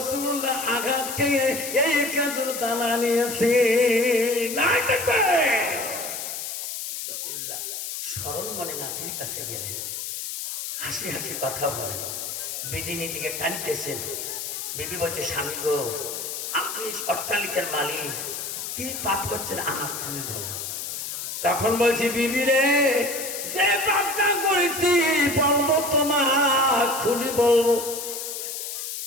আঘাত খেয়ে এই খেজুর দানা নিয়েছে। নাই দেখবে রাসূলুল্লাহ স্মরণ মনে নাতির কাছে গেলেন, হাসি হাসি কথা বলেন, বিদিনীর দিকে টানতেছেন। বিবি বলছে স্বামী গো আপনি অট্টালিকার মালিক, কি পাপ করছেন আমার খুলে বলো। তখন বলছি বিবি রে, যে পাপটা করেছি বলবো তোমার খুলি বলবো।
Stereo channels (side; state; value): left; noise; hiss, 6 dB below the sound